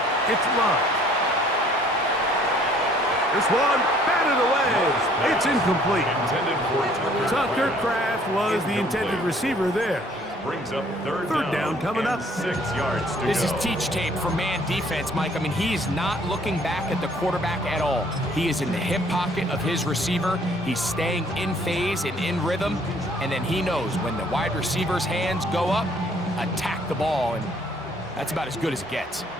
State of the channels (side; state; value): both; normal; correlation 0.59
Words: it's Love. This one, batted away. It's incomplete. Intended for Tucker Kraft was the intended receiver there. Brings up third down coming up. 6 yards to This go. is teach tape for man defense, Mike. I mean, he is not looking back at the quarterback at all. He is in the hip pocket of his receiver. He's staying in phase and in rhythm. And then he knows when the wide receiver's hands go up, attack the ball. And that's about as good as it gets.